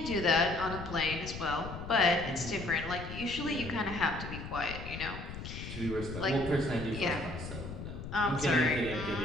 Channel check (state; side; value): noise; left; rumble, 9 dB below the sound